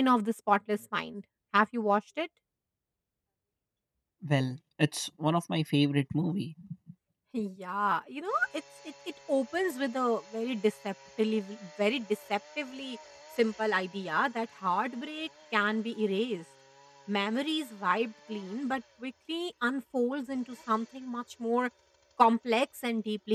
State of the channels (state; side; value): identical; both; correlation 1.00